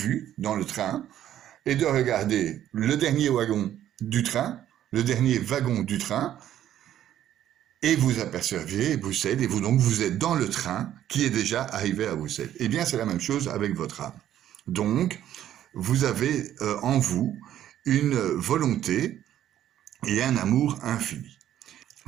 dans le train et de regarder le dernier wagon du train, le dernier wagon du train, et vous apercevez Bruxelles, et vous êtes dans le train qui est déjà arrivé à Bruxelles. Eh bien, c'est la même chose avec votre âme. Donc, vous avez en vous une volonté et un amour infini.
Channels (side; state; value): left; quieter; 11.6 dB